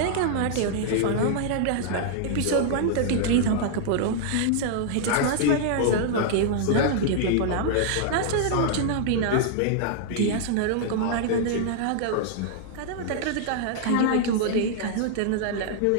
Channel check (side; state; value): both; different; correlation -0.01